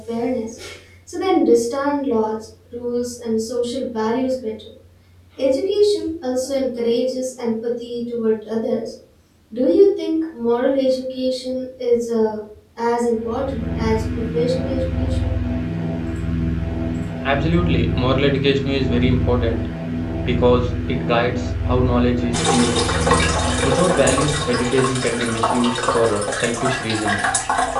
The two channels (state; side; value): identical; both; correlation 1.00